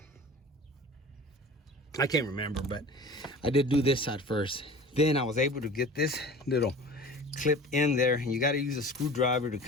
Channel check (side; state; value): both; normal; correlation 0.39